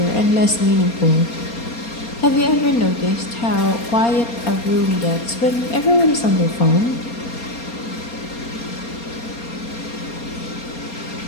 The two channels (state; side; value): late; right; 4.3 ms